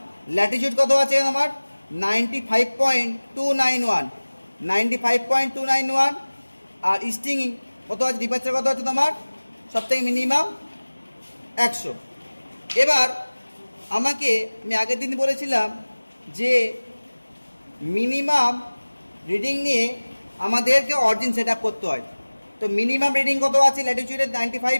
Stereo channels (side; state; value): both; inverted; correlation -1.00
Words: ল্যাটিটিউড কত আছে তোমার 95.291, 95.291 আর ইস্টিং কত আছে, ডিপারচার কত আছে তোমার সব থেকে মিনিমাম 100। এবার আমি আগের দিন বলেছিলাম যে মিনিমাম রিডিং নিয়ে আমাদেরকে অরিজিন সেট আপ করতে হয়। তো মিনিমাম রিডিং কত আছে ল্যাটিটিউডের